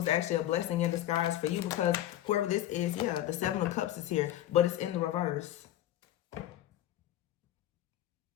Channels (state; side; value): quieter; right; 13.0 dB